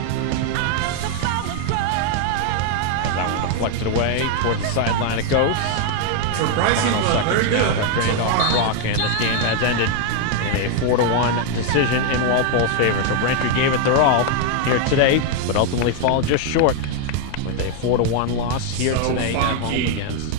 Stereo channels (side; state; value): both; different; correlation 0.00